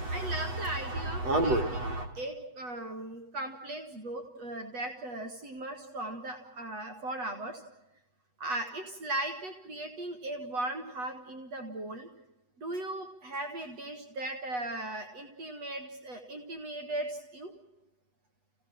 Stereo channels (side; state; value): left; late; 8.1 ms